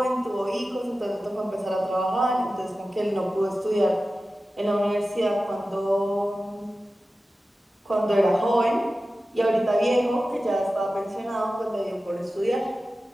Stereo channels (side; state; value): both; normal; correlation 0.94